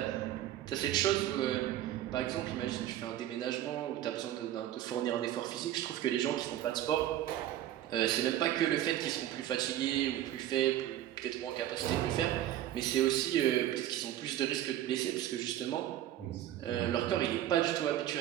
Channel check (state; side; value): quieter; left; 12.7 dB